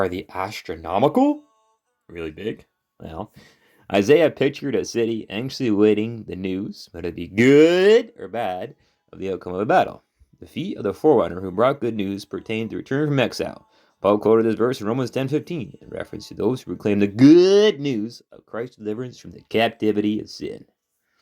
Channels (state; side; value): identical; both; correlation 1.00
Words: they astronomical? Really big? Well, Isaiah pictured a city anxiously awaiting the news, whether it be good or bad, of the outcome of a battle. The feet of the forerunner who brought good news pertained to return from exile. Paul quoted this verse in Romans 10:15 in reference to those who proclaim the good news of Christ's deliverance from the captivity of sin.